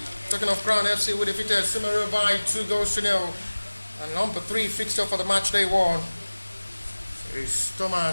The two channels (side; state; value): both; inverted; correlation -1.00